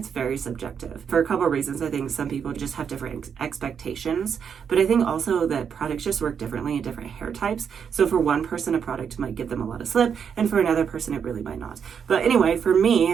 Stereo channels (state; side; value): quieter; left; 7.2 dB